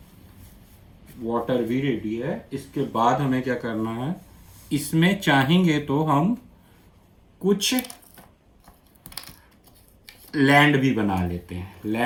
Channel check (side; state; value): both; identical; correlation 1.00